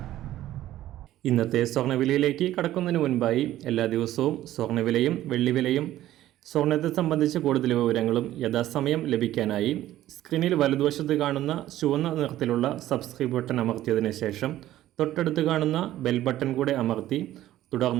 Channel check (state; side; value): quieter; left; 13.9 dB